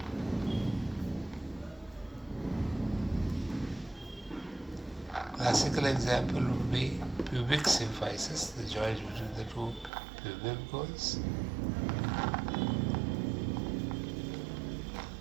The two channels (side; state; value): left; drops out; at 9.9 s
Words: classical example would be pubic symphysis, the joint between the two pubic bones.